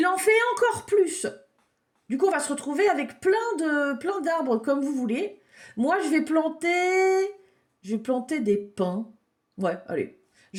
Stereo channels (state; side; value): identical; both; correlation 1.00